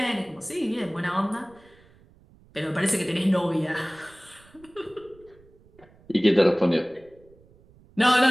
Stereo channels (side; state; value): right; noise; rumble, 28 dB below the sound